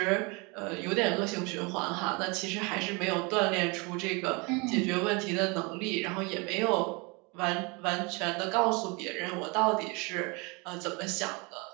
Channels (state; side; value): quieter; left; 28.7 dB